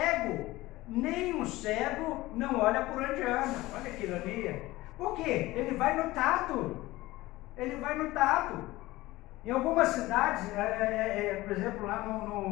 Nem o cego não olha por onde anda. Olha que ironia. Por quê? Ele vai no tato. Ele vai no tato. Em algumas cidades, por exemplo, lá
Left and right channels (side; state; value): right; quieter; 18.6 dB